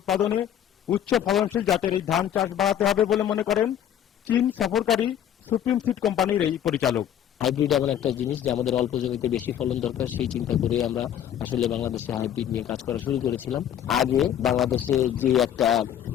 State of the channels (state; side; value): quieter; right; 10.1 dB